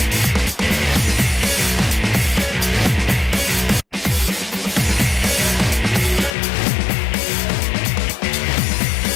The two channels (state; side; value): drops out; right; at 6.4 s